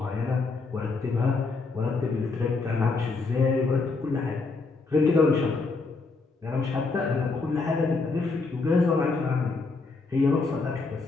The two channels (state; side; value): quieter; right; 4.0 dB